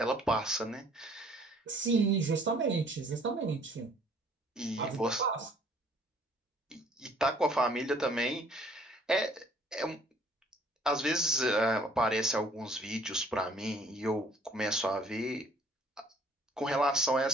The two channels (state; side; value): normal; both; correlation 0.58